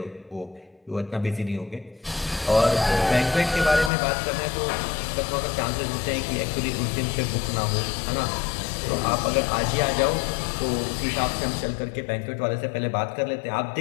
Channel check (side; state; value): right; drops out; at 3.9 s